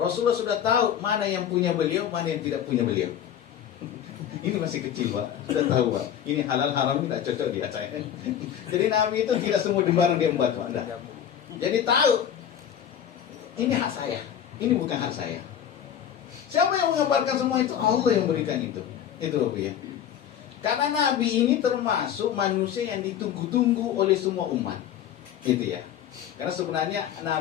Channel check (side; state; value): right; quieter; 9.6 dB